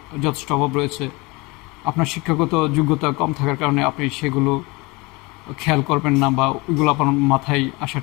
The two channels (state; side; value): quieter; right; 25.2 dB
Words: যথেষ্ট অভাব রয়েছে। আপনার শিক্ষাগত যোগ্যতা কম থাকার কারণে আপনি সেগুলো খেয়াল করবেন না, বা ওইগুলো আপনার মাথায়